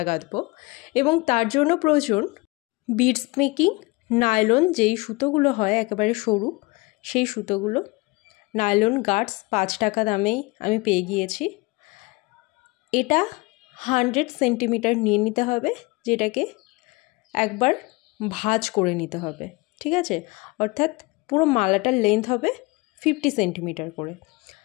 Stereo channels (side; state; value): right; quieter; 24.6 dB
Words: গাঁথবো এবং তার জন্য প্রয়োজন বিটস মেকিং নাইলন, যেই সুতোগুলো হয় একেবারে সরু, সেই সুতোগুলো নাইলন গার্ডস 5 টাকা দামেই আমি পেয়ে গিয়েছি। এটা 100 সেন্টিমিটার নিয়ে নিতে হবে, যেটাকে একবার ভাঁজ করে নিতে হবে, ঠিক আছে? অর্থাৎ পুরো মালাটার লেন্থ হবে 50 সেন্টিমিটার করে।